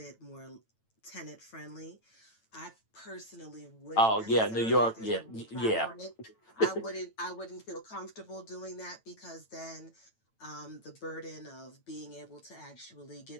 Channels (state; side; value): late; right; 9.0 ms